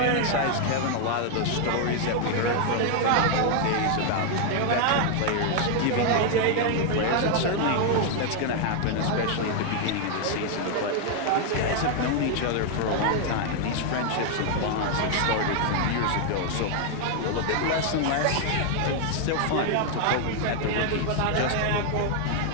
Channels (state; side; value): different; both; correlation 0.00